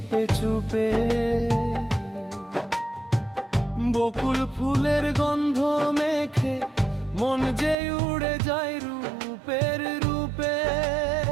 চুপে, বকুল ফুলের গন্ধ মেখে মন যে উড়ে যায় রূপের রূপে।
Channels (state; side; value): drops out; left; at 7.8 s